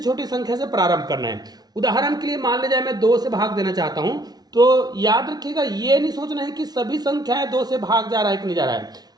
संख्या से प्रारंभ करना है। उदाहरण के लिए मान लीजिए मैं 2 से भाग देना चाहता हूं, तो याद रखिएगा ये नहीं सोचना है कि सभी संख्याएं 2 से भाग जा रहा है कि नहीं जा रहा है।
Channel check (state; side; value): late; left; 0.19 ms